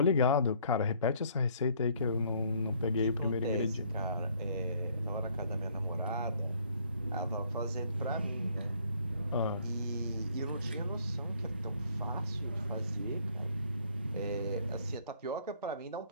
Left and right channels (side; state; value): both; inverted; correlation -0.62